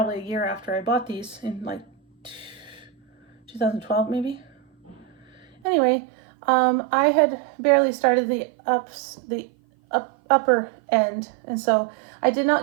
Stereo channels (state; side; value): drops out; left; at 5.5 s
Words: a year after I bought these in like 2012 maybe. Anyway, I had barely started the upper end, and so I did